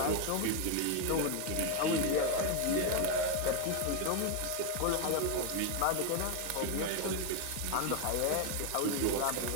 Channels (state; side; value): different; both; correlation 0.01